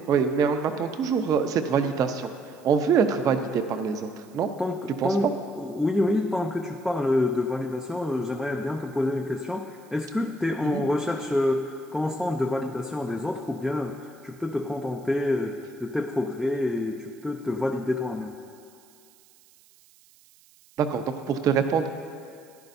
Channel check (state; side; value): noise; right; hiss, 29 dB below the sound